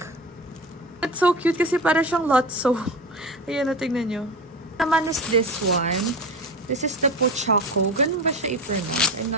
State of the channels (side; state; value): both; normal; correlation 0.28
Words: It's so cute kasi para siyang Lotso. Ayan, tingnan nyo. Naman is this one. This is the Pochaco. Ganun ba siya i-pronounce? I'm